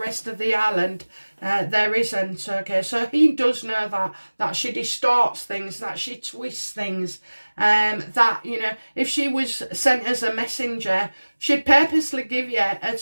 of the island, there isn't. Okay, so he does know that she distorts things, that she twists things, that, you know, if she was sent as a messenger, she'd purposely give you a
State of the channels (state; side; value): inverted; both; correlation -1.00